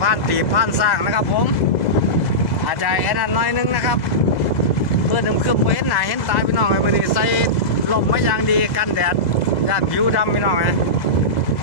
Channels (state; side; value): late; right; 2.0 ms